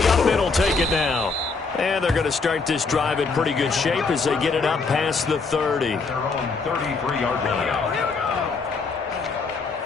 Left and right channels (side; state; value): right; quieter; 4.4 dB